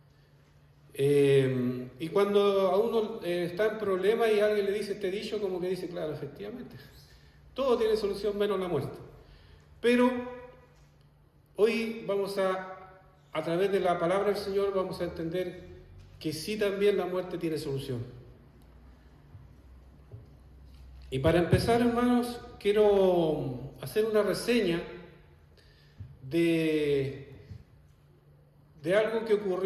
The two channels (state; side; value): identical; both; correlation 1.00